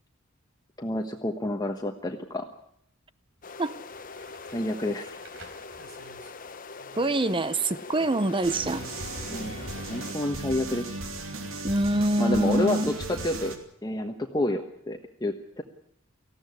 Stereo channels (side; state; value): both; normal; correlation 0.61